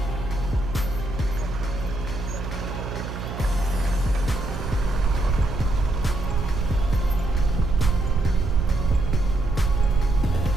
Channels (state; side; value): noise; right; hum, 7 dB below the sound